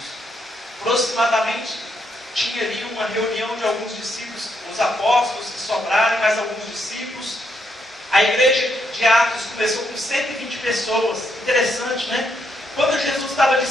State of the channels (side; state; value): both; normal; correlation 0.77